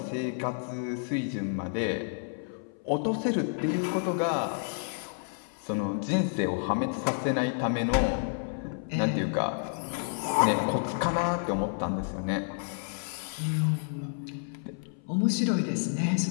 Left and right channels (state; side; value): silent; right; 57 dB below the other